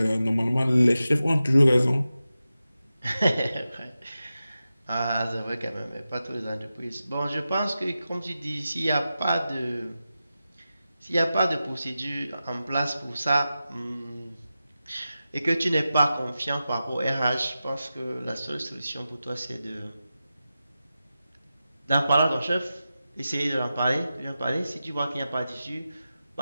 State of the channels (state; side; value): inverted; both; correlation -0.92